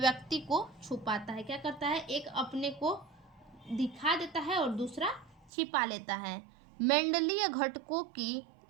को छुपाता है। क्या करता है, एक अपने को दिखा देता है और दूसरा छिपा लेता है। मेंडलीय घटकों की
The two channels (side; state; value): left; drops out; at 5.5 s